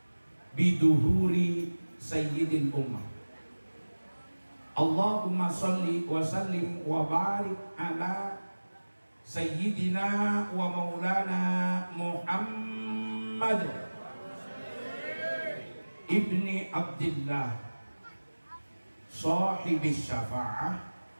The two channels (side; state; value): both; inverted; correlation -1.00